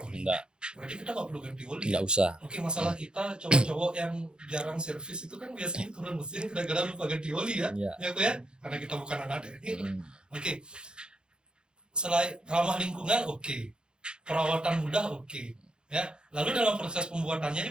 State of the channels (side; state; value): left; late; 0.049 ms